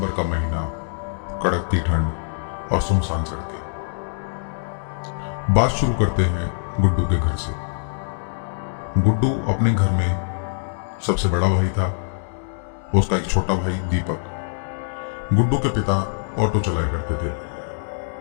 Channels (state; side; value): silent; right; digital silence